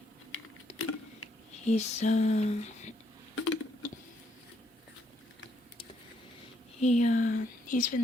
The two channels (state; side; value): normal; both; correlation 0.73